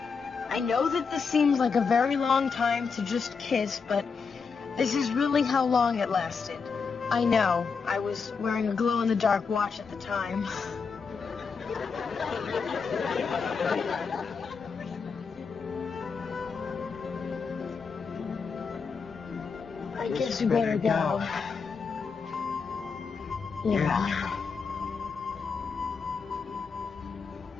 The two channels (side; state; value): right; quieter; 5.4 dB